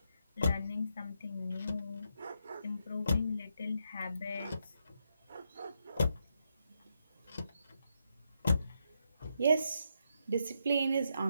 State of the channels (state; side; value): inverted; both; correlation -0.81